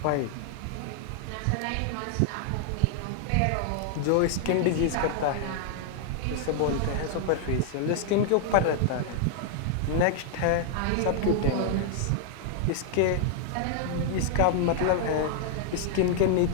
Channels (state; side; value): different; both; correlation 0.00